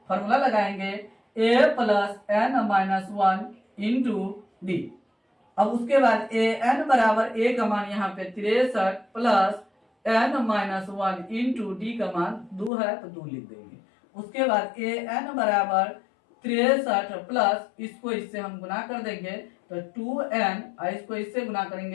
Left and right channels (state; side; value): drops out; right; at 12.7 s